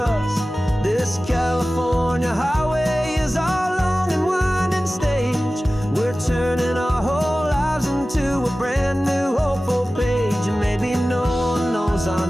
This California highway is our long and winding stage. We're turning our whole lives into a brand new hopeful page. And maybe no one knows our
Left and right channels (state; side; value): normal; both; correlation 0.96